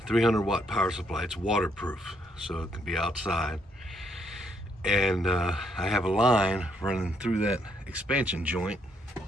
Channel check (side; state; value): both; normal; correlation 0.72